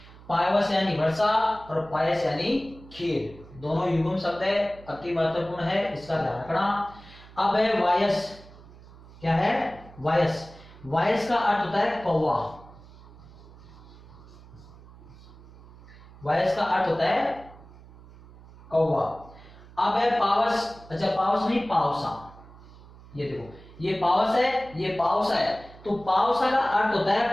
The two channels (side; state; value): right; noise; hum, 20 dB below the sound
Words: पायवस यानी वर्षा और पायस यानी खीर, दोनों युग्म शब्द है, अति महत्वपूर्ण है, इसका ध्यान रखना। अब है वायस। क्या है? वायस। वायस का अर्थ होता है कौवा। वायस का अर्थ होता है कौवा। अब है पावस। अच्छा, पावस नहीं, पावसा। ये देखो, ये पावस है, ये पावसा है। तो पावसा का अर्थ होता